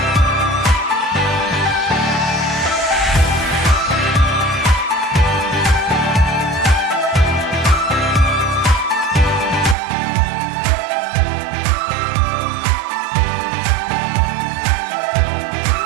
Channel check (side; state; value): left; drops out; at 9.8 s